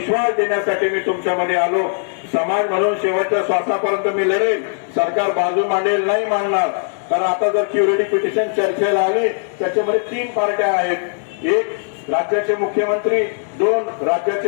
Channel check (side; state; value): right; silent; digital silence